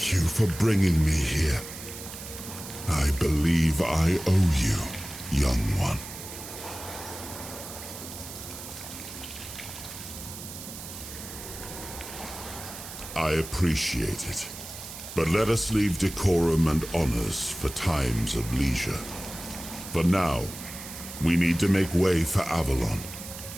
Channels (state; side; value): noise; right; hiss, 11 dB below the sound